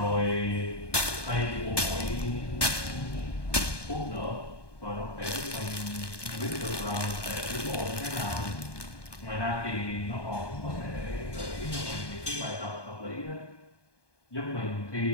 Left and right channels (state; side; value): late; right; 1.2 ms